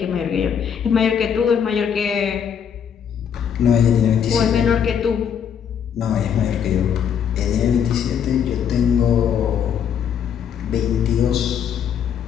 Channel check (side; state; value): right; quieter; 8.0 dB